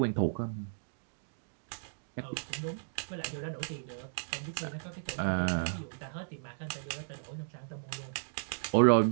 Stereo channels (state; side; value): silent; left; digital silence